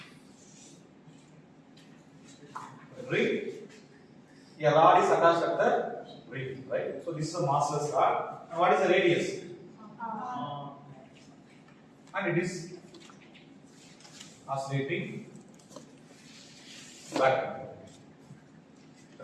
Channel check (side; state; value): both; identical; correlation 1.00